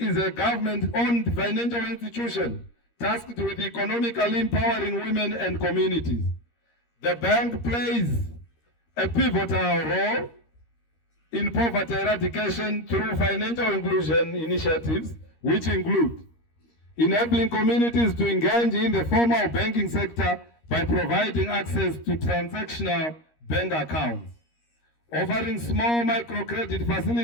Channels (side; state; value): right; late; 13 ms